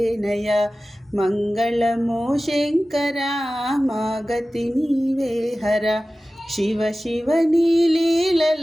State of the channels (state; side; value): normal; both; correlation 0.96